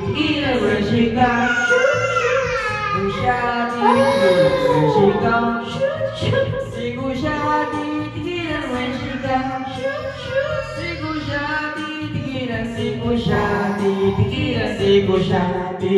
ng sikap. Di ko siya titigilan ng sikap. Di ko siya titigilan ng sikap. Di ko siya titigilan, di ko siya titigilan, di ko siya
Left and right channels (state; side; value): identical; both; correlation 1.00